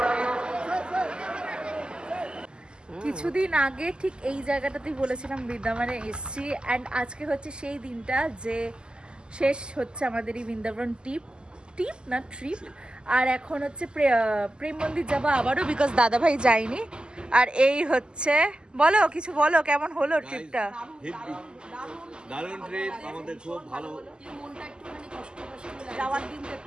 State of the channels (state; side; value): late; left; 0.047 ms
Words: কিছুদিন আগে ঠিক এই জায়গাটাতেই বলেছিলাম বৃন্দাবনে এসছি অ্যান্ড আজকে হচ্ছে সেই দিনটা যে শেষ হচ্ছে আমাদের এই বৃন্দাবন ট্রিপ না ট্রিপ। আর এখন হচ্ছে প্রেম মন্দির যাবো আবারও, বিকজ দাদা ভাই যায়নি। আর এই হচ্ছে বলো কিছু বলো, কেমন হলো ট্রিপটা? দারুণ ট্রিপ, আমাদের খুব ভালো। মনটা একটুখানি কষ্ট যাওয়ার দিনটা একটু